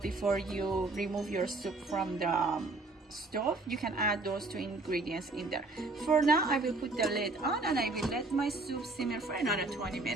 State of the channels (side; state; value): left; quieter; 3.1 dB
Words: you remove your soup from the stove. You can add those two ingredients in there. For now, I will put the lid on and I will let my soup simmer for another 20